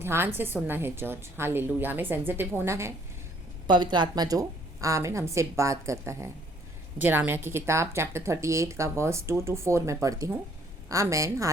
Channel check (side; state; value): both; normal; correlation 0.62